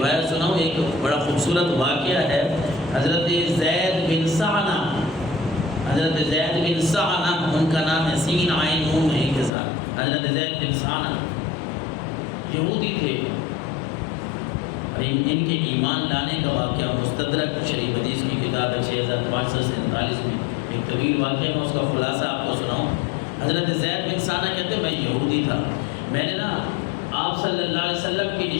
روایت سناؤں؟ ایک بڑا خوبصورت واقعہ ہے۔ حضرت زید بن سعنہ، حضرت زید بن سعنہ، ان کا نام ہے، سین عین نون ہے کے ساتھ، حضرت زید بن سعنہ یہودی تھے۔ ان کے ایمان لانے کا واقعہ مستدرک شریف حدیث کی کتاب ہے 6547 میں ایک طویل واقعہ، میں اس کا خلاصہ آپ کو سناؤں۔ حضرت زید بن سعنہ کہتے ہیں میں یہودی تھا، میں نے نا آپ صلی اللہ علیہ وسلم کی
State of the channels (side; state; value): right; drops out; at 9.5 s